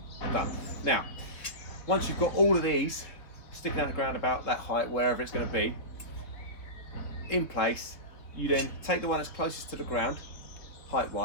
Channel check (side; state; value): right; late; 3.3 ms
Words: Done. Now, once you've got all of these sticking out the ground about that height, wherever it's going to be, in place, you then take the one that's closest to the ground,